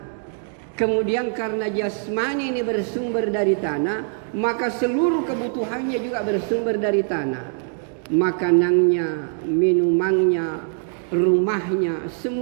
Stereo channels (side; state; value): left; silent; 64 dB below the other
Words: Kemudian karena jasmani ini bersumber dari tanah, maka seluruh kebutuhannya juga bersumber dari tanah. Makanannya, minumannya, rumahnya,